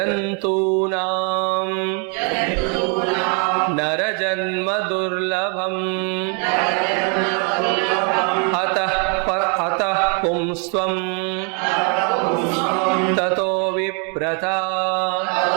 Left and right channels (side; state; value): left; quieter; 38.2 dB